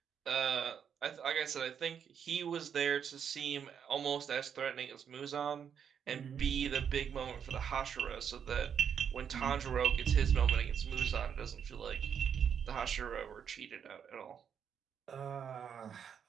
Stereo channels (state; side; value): quieter; left; 7.8 dB